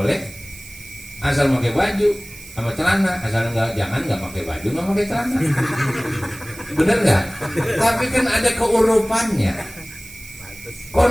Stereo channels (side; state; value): right; noise; hiss, 17 dB below the sound